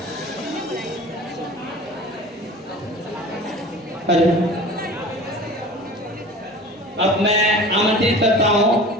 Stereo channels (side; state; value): both; normal; correlation 0.39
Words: अब मैं आमंत्रित करता हूं